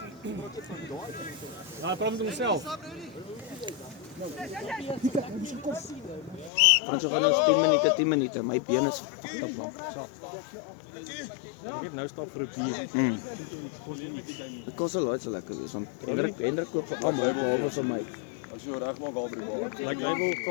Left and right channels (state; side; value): drops out; right; at 6.5 s